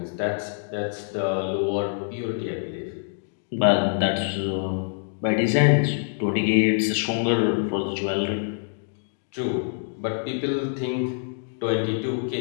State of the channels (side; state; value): right; silent; digital silence